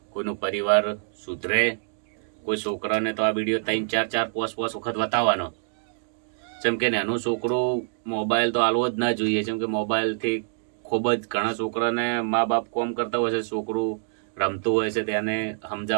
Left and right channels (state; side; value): silent; left; digital silence